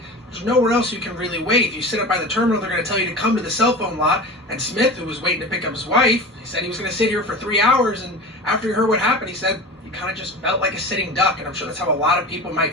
There's nowhere else you can really wait. If you sit up by the terminal, they're going to tell you to come to the cell phone lot. And Smith, who was waiting to pick up his wife, he said he was going to sit here for 3 hours. And after he heard what happened, he said he kind of just felt like a sitting duck. And I'm sure that's how a lot of people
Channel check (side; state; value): both; normal; correlation 0.32